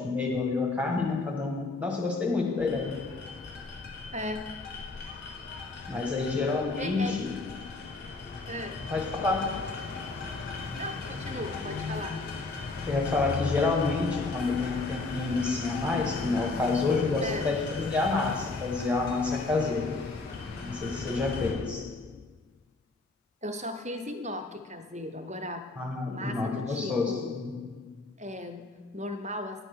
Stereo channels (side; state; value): right; quieter; 3.3 dB